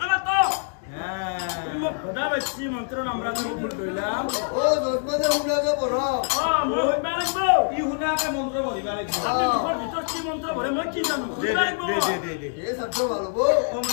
না তো হ্যাঁ মই ভদা বেছি মন্ত্র নামরা তুমি ভুল কইলাম ও দশমনে হুনাকে পড় মই হইবা লাগব ই শুনাকে মন্ত্ৰ পঢ়িবা লাগিব আপনি মুখৰ ভিতৰত কি মন্ত্র পঢ়ে মই কি জানো দে হইবা লাগব দে এ সত্য ভালো বো ওম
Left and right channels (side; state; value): right; silent; digital silence